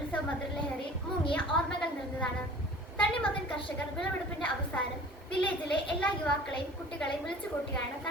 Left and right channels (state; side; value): normal; both; correlation 0.45